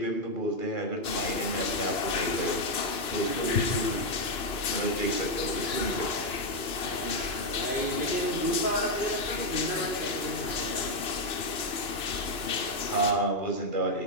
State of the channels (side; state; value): right; late; 2.9 ms